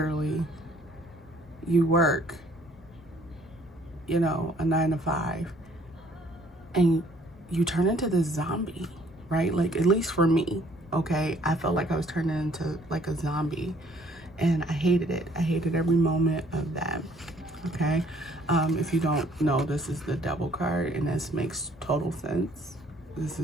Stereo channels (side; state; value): both; normal; correlation 0.61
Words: you work, you know, a 9 to 5, and you turn into this zombie, right? Like, at least for me, okay? I felt like I was turning into like a zombie, and I hated it. I hated every moment of that, okay? If you don't know, this is the devil card, and this makes total sense. This